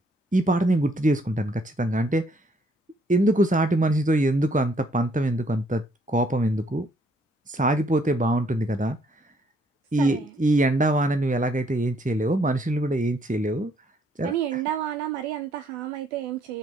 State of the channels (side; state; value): both; normal; correlation 0.67